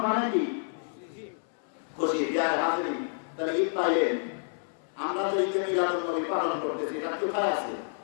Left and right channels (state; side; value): silent; right; 58 dB below the other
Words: মানে কি? খুশি। যার হাজির তাহলে ঈদ পাইলেন, আমরা তো ঈদে মিলাদুন নবী পালন করতেছি, এটা কোথায় আছে?